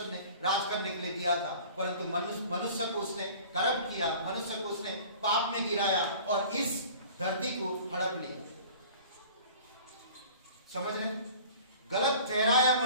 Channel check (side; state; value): both; inverted; correlation -0.45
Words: ने राज करने के लिए दिया था, परंतु मनुष्य को उसने करप्ट किया, मनुष्य को उसने पाप में गिराया और इस धरती को हड़प लिया। समझ रहे? गलत ठहराया